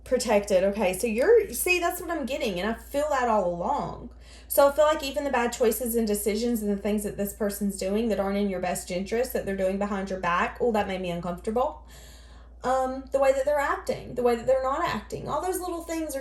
Protected. Okay, so see, that's what I'm getting. And I feel that all along. So I feel like even the bad choices and decisions and the things that this person's doing that aren't in your best interest, that they're doing behind your back, oh, that made me uncomfortable. The way that they're acting, the way that they're not acting, all those little things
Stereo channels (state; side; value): identical; both; correlation 1.00